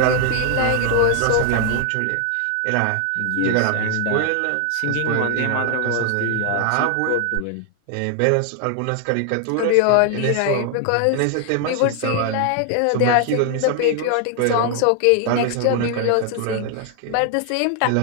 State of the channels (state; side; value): different; both; correlation 0.00